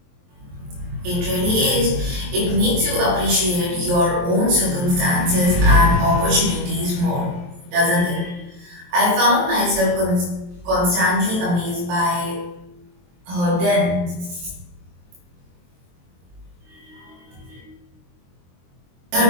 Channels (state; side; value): late; left; 23 ms